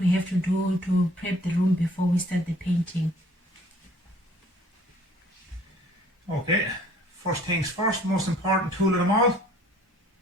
have to do to prep the room before we start the painting. Okay, first things first, most important tool of them all,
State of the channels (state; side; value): normal; both; correlation 0.56